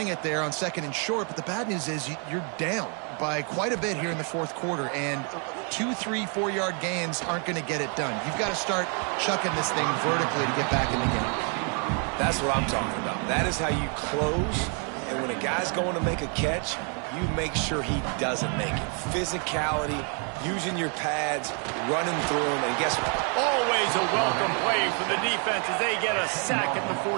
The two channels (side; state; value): left; quieter; 39.1 dB